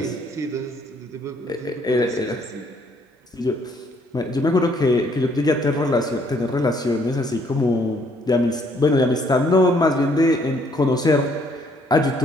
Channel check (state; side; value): normal; both; correlation 0.66